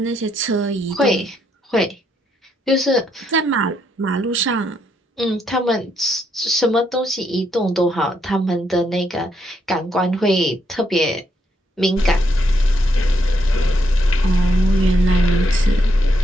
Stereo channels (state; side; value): normal; both; correlation 0.76